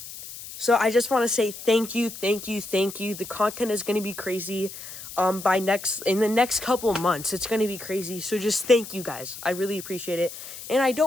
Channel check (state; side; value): noise; left; hiss, 12 dB below the sound